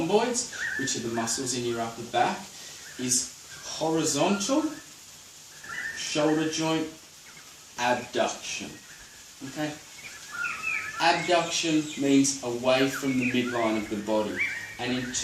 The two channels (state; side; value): identical; both; correlation 1.00